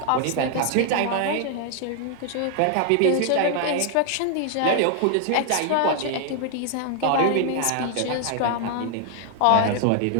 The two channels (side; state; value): both; different; correlation 0.00